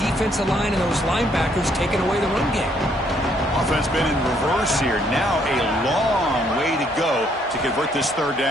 defensive line and those linebackers taking away the run game. Offense been in reverse here. Now a long way to go to convert this 3rd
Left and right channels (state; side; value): normal; both; correlation 0.68